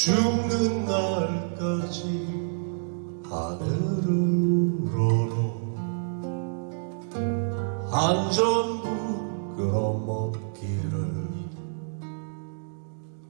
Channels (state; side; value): silent; left; digital silence